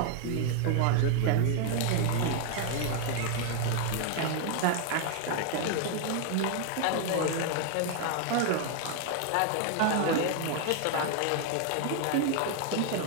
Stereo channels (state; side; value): different; both; correlation 0.00